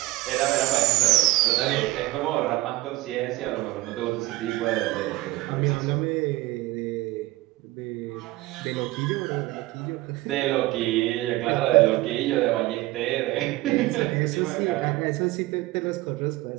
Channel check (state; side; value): quieter; left; 19.0 dB